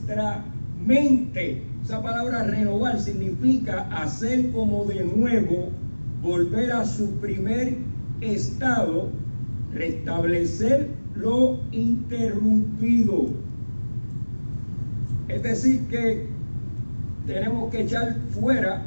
mente. Esa palabra renovar significa hacer como de nuevo, volver a su primer estado, restablecer lo interrumpido. Es decir, que tenemos que echar fuera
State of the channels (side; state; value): both; inverted; correlation -1.00